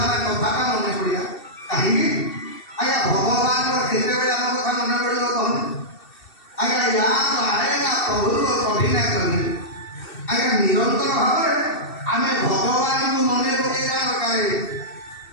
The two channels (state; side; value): late; right; 2.7 ms